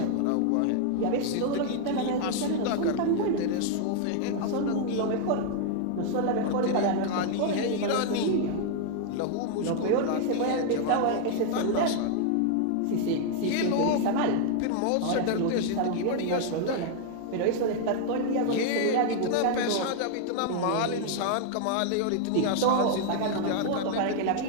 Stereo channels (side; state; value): both; different; correlation 0.00